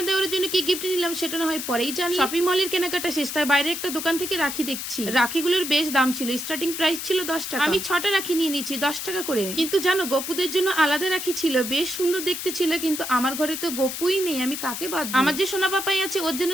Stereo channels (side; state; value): left; noise; hiss, 6 dB below the sound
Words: দেওরের জন্য কি গিফট নিলাম সেটা না হয় পরেই জানি। শপিং মলের কেনাকাটা শেষ, তাই বাইরে একটা দোকান থেকে রাখি দেখছি। রাখিগুলোর বেশ দাম ছিল, স্টার্টিং প্রাইস ছিল 10 টাকা। আমি 6টা রাখি নিয়ে নিয়েছি 10 টাকা করে। কিন্তু জানো গপুদের জন্য আলাদা রাখি ছিল, বেশ সুন্দর দেখতে ছিল, কিন্তু আমার ঘরে তো গপুই নেই, আমি কাকে বাঁধবো? আমার যে সোনা পাপাই আছে ওর জন্য